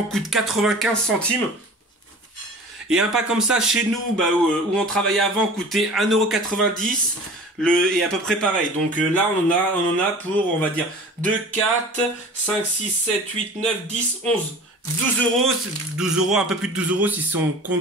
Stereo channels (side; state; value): both; normal; correlation 0.41